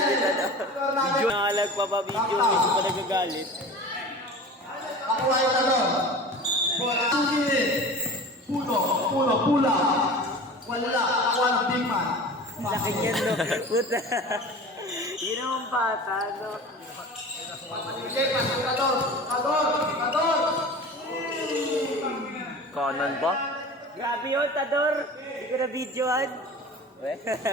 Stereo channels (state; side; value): normal; both; correlation 0.37